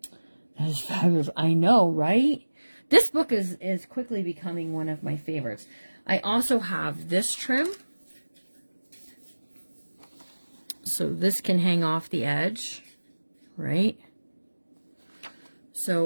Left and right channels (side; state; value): both; inverted; correlation -1.00